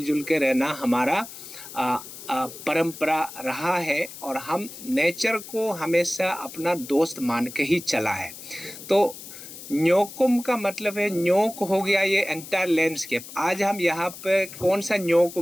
के रहना हमारा परंपरा रहा है और हम नेचर को हमेशा अपना दोस्त मान के ही चला है। तो न्योकुम का मतलब है, न्योक हो गया ये एंटायर लैंडस्केप। आज हम यहाँ पे कौन सा न्योक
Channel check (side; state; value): left; noise; hiss, 14 dB below the sound